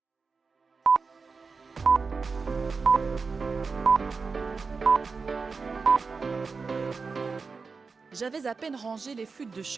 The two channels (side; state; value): left; quieter; 4.7 dB